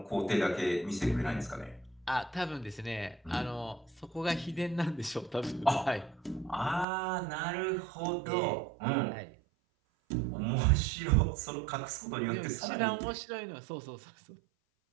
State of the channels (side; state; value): left; drops out; at 6.9 s